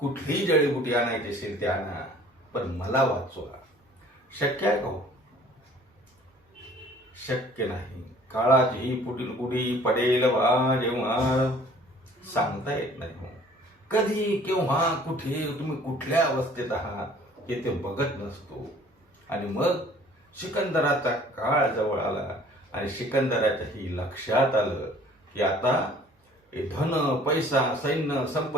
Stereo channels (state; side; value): normal; both; correlation 0.53